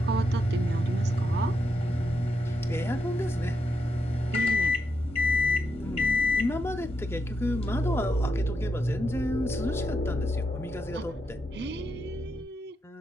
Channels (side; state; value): both; normal; correlation 0.83